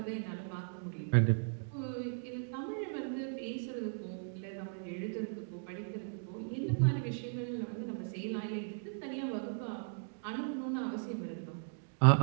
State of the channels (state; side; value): silent; left; digital silence